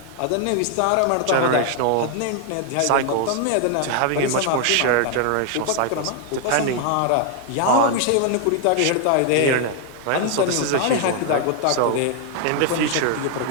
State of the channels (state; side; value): different; both; correlation 0.00